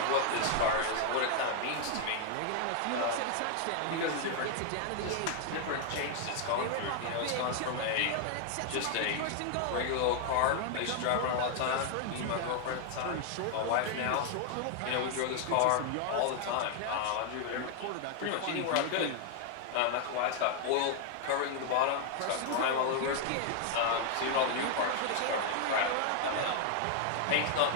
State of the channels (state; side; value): different; both; correlation 0.00